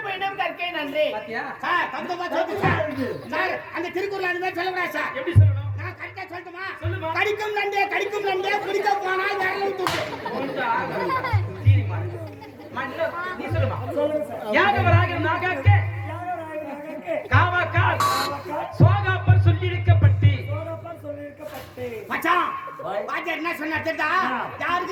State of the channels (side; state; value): both; identical; correlation 1.00